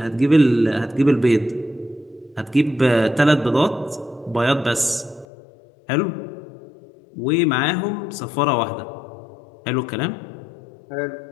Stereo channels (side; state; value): right; drops out; at 5.2 s